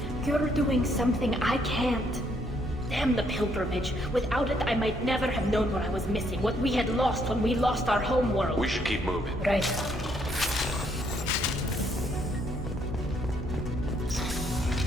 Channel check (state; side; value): normal; both; correlation 0.71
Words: you're doing something I can't. Damn the pilgrimage. Without it, I might never have known what I was missing, what we had lost when we lost our homeworld. We should keep moving. Right.